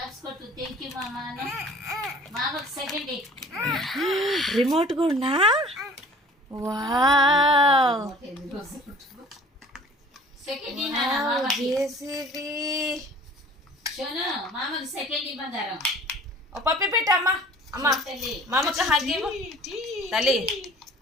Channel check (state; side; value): normal; both; correlation 0.48